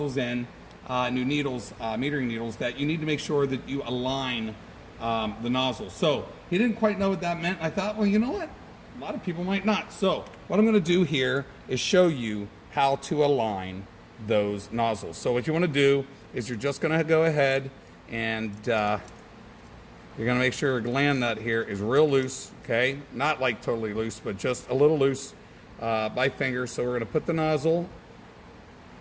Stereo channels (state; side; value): identical; both; correlation 1.00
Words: in, new needles, metering needles, that you need to make sure that you align the nozzle. So he didn't quite know what that meant. I thought, well, you know what? A lot of people might not. So what I'm going to do here is show you how to align those nozzles. So what you want to do is you're just going to go ahead and you're going to make sure your gland nut here is real loose, okay? Not like totally loose, but just a little loose by finger. So we're going to put the nozzle